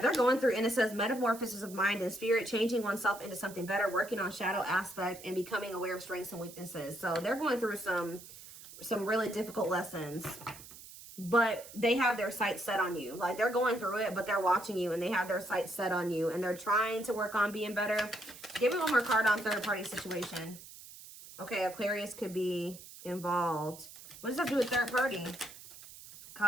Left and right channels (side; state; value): right; noise; hiss, 16 dB below the sound